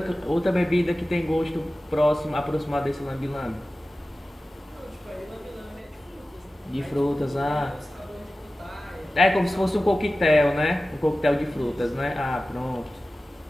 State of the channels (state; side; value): normal; both; correlation 0.96